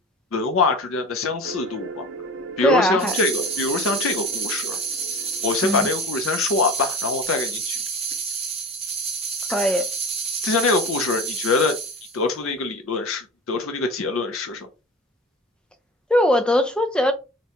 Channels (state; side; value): normal; both; correlation 0.35